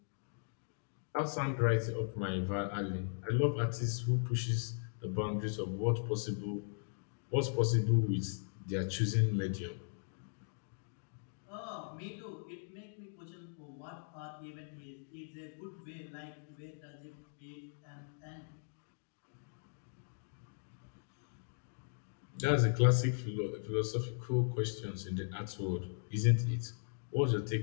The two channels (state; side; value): silent; right; digital silence